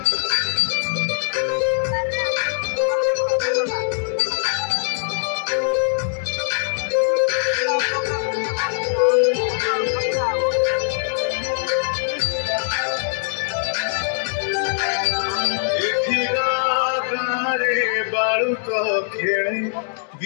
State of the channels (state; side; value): silent; right; digital silence